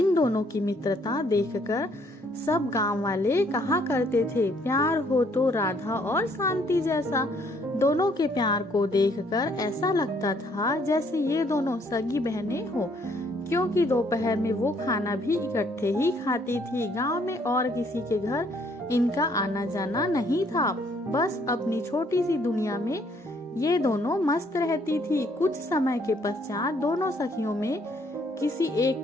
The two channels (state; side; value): normal; both; correlation 0.66